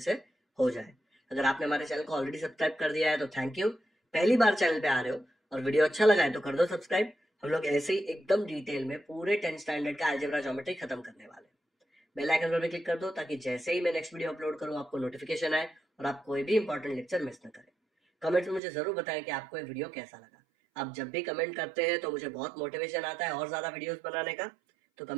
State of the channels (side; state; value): left; drops out; at 18.6 s